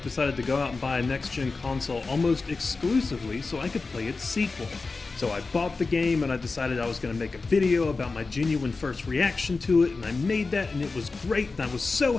to go out and buy a next-gen console almost exclusively so I could play its sequel. So I bought the game and I decided I was going to make a video about my genuine first reaction to it, and I made that and it was great and I was so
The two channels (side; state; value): right; quieter; 4.0 dB